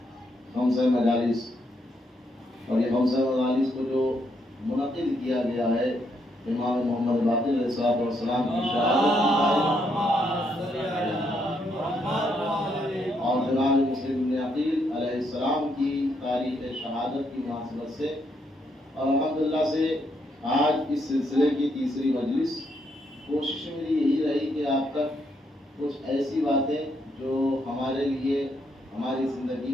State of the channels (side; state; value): both; normal; correlation 0.76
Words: خمسہ مجالس، اور یہ خمسہ مجالس کو جو منعقد کیا گیا ہے امام محمد باقر علیہ السلام کی شہادت اور جناب مسلم بن عقیل علیہ السلام کی تاریخ شہادت کی مناسبت سے، اور الحمدللہ سے آج اس سلسلے کی تیسری مجلس. کوشش میری یہی رہی کہ آپ تک کچھ ایسی باتیں جو ہمارے لیے، ہماری زندگی